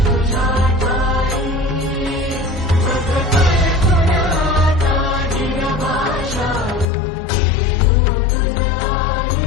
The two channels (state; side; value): drops out; right; at 6.9 s